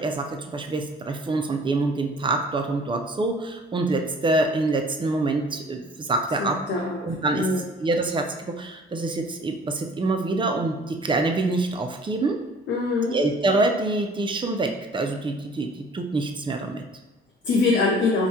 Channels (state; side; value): normal; both; correlation 0.50